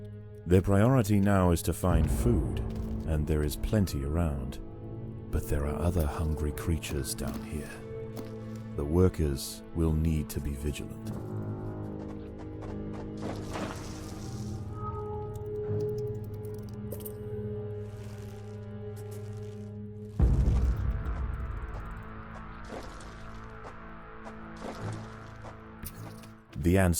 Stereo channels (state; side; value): identical; both; correlation 1.00